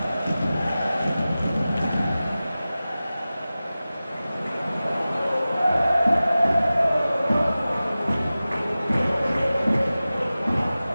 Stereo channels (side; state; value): both; inverted; correlation -0.96